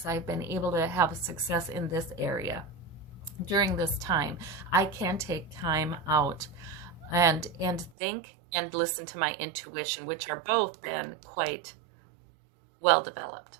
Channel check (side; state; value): left; drops out; at 7.9 s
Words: I've been able to have success in this area during this time. I can take time out and think and listen to my intuition, which are both been quite well developed.